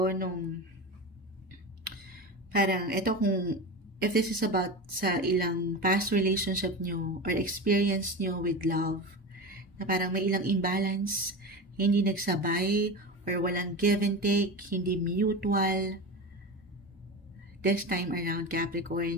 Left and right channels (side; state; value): both; normal; correlation 0.25